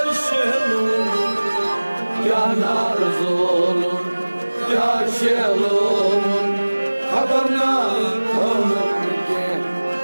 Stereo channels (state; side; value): inverted; both; correlation -1.00